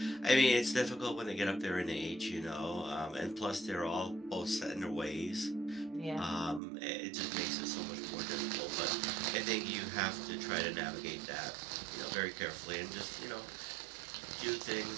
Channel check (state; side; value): drops out; left; at 6.6 s